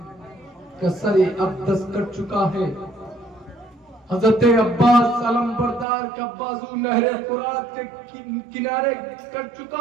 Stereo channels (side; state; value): left; drops out; at 5.9 s